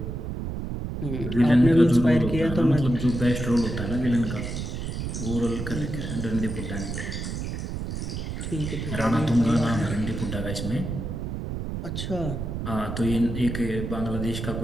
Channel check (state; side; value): noise; right; rumble, 5 dB below the sound